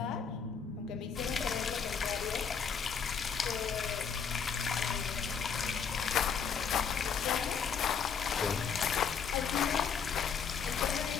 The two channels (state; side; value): quieter; right; 6.6 dB